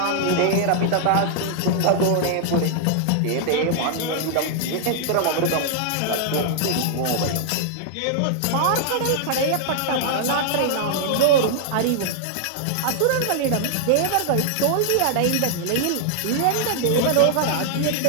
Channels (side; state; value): both; different; correlation -0.01